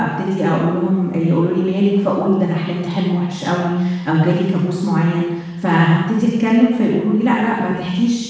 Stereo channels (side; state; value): both; identical; correlation 1.00